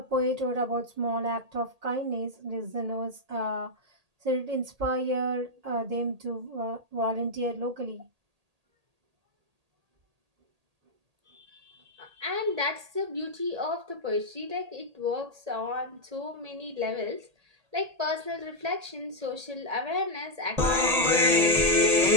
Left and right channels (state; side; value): late; left; 1.8 ms